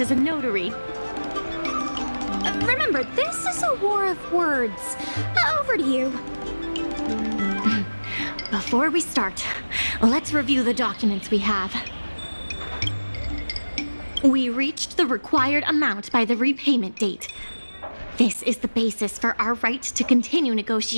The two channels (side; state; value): both; inverted; correlation -1.00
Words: as a notary. Remember, this is a war of words. Over to you. Before we start, let's review the documents we have. We reached the required amount by the repayment date. This is the basis for our right to continue